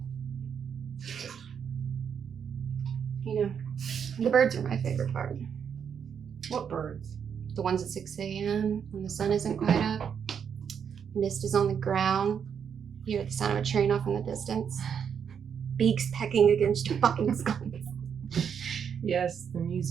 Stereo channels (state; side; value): quieter; left; 7.5 dB